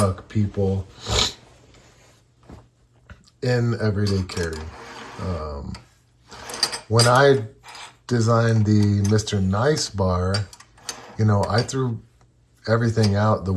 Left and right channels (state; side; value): identical; both; correlation 1.00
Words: people in everyday carry. When I designed the Mr. NiceBar, I threw everything out the